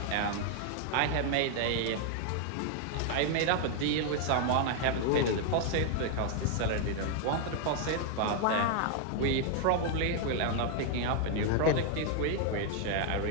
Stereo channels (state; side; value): different; both; correlation 0.00